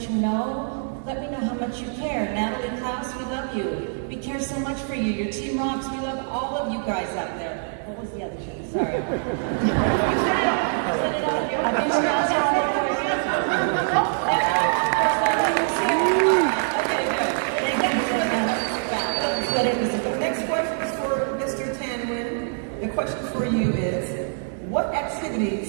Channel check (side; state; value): left; silent; 61 dB below the other